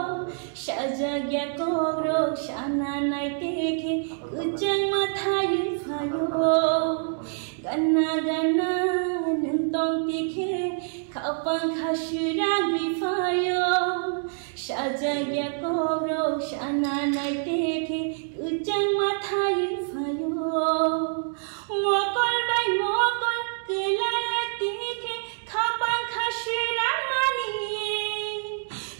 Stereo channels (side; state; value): left; silent; 61 dB below the other